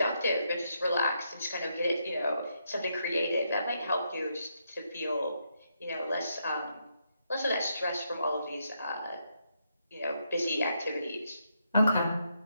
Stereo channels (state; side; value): inverted; both; correlation -0.79